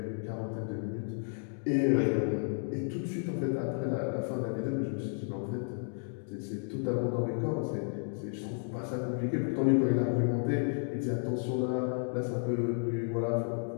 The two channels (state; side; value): silent; right; 56 dB below the other